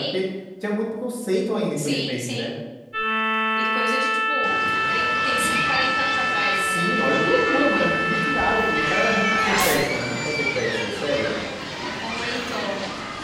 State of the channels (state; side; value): identical; both; correlation 1.00